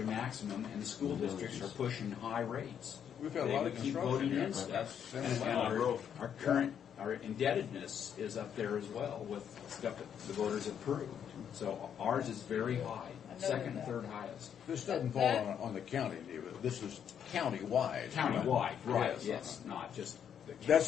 maximum, and the school districts are pushing high rates. We've had a They lot would of keep construction voting here. in That's stuff. been And a lot of growth. our current, our indebtedness is up there as well with stuff that the voters approved. So ours is very high, second and third highest. This doesn't fall on the county, David. This is county-wide. Countywide, right, Yes. not just the county. That's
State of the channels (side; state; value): right; quieter; 8.5 dB